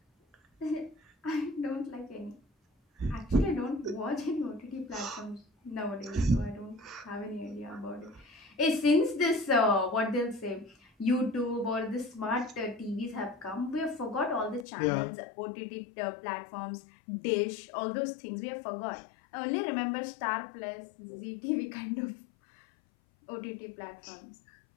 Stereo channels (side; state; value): right; drops out; at 14.7 s